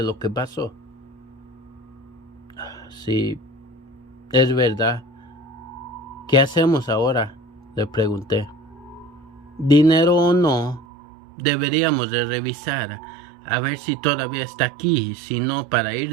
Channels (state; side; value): drops out; left; at 10.9 s